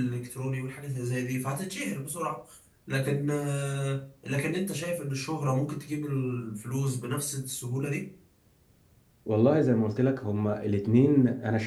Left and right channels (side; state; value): both; identical; correlation 1.00